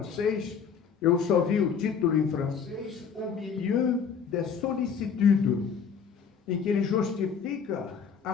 eu só vi o título em francês: Au milieu des sollicitudes, em que ele justifica a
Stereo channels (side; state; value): right; quieter; 6.6 dB